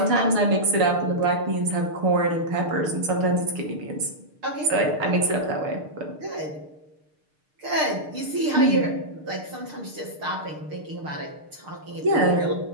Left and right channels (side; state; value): left; late; 6.6 ms